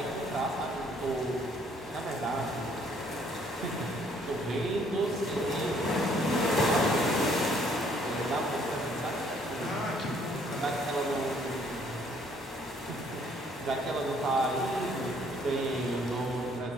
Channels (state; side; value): normal; both; correlation 0.64